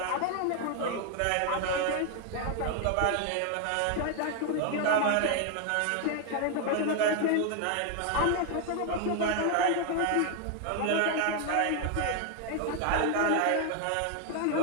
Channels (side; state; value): both; different; correlation 0.00